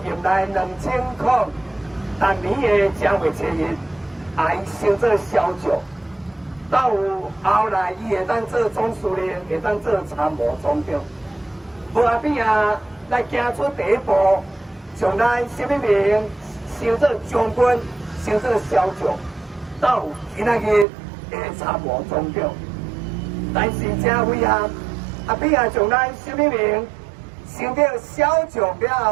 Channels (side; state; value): left; drops out; at 20.9 s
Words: 任内2000当年的正月初一，伊升做小将，到有后来伊会当做总司令，会当做参谋总长。无阿扁啊来行出第一步，从咱什么名升做将军，升做小将，到有今仔日的参谋总长。但是真遗憾，阿扁啊从咱什么名升到小将了